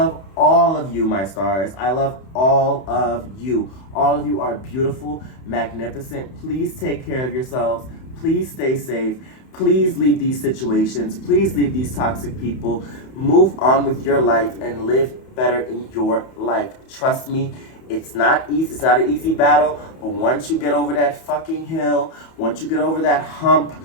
all of you, my stars. I love all of you. All of you are beautiful, magnificent. Please take care of yourselves. Please stay safe. Please leave these situations. Please leave these toxic people. Move on with your life and live better in your life. Trust me. It's not easy. It's not an easy battle, but once you get over that fucking hill, once you get over that hump,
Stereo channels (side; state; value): right; late; 31 ms